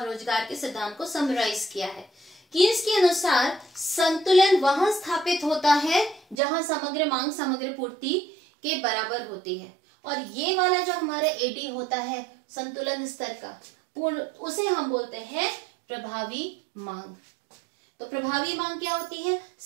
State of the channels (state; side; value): drops out; left; at 6.4 s